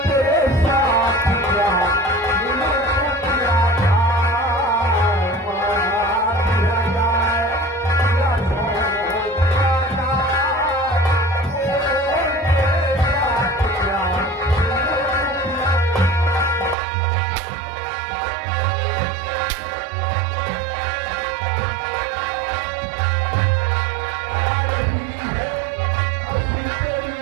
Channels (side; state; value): left; drops out; at 16.8 s